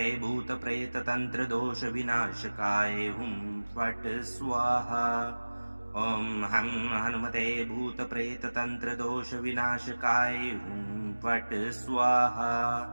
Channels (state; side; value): inverted; both; correlation -1.00